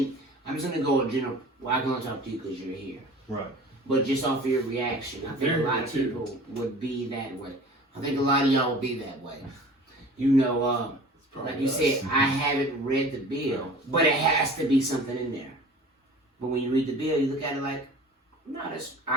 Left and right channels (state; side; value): normal; both; correlation 0.43